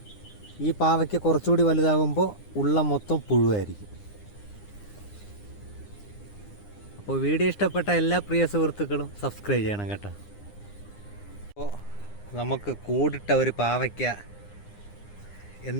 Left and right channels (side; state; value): right; late; 9.8 ms